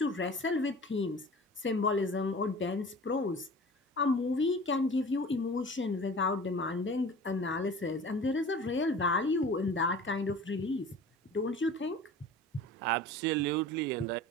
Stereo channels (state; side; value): normal; both; correlation 0.41